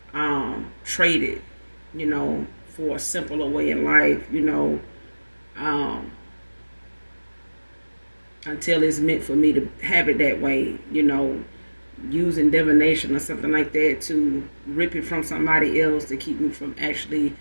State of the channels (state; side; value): inverted; both; correlation -1.00